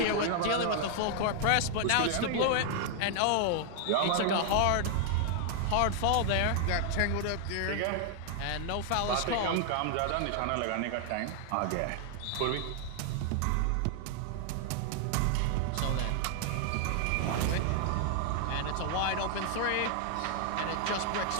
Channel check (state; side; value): different; both; correlation 0.00